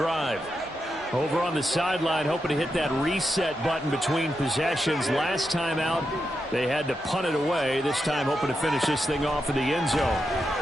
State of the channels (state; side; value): normal; both; correlation 0.86